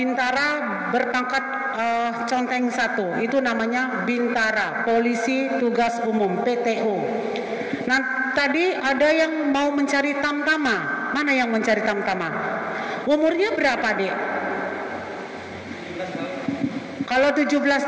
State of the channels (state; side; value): identical; both; correlation 1.00